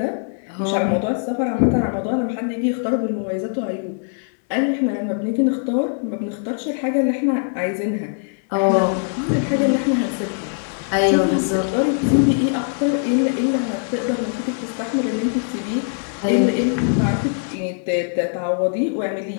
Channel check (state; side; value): silent; right; 65 dB below the other